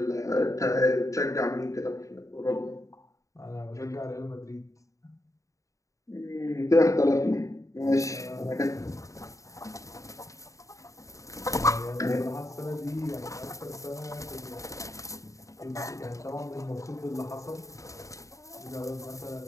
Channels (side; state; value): right; late; 0.16 ms